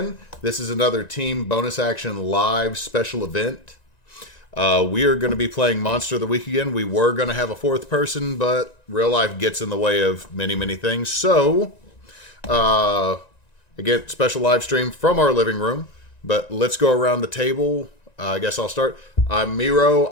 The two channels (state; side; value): late; right; 1.9 ms